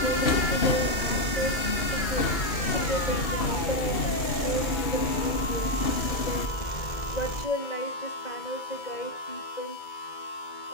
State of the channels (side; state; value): right; late; 2.2 ms